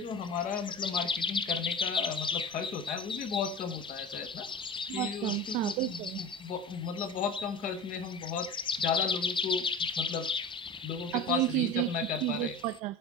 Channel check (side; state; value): both; normal; correlation 0.32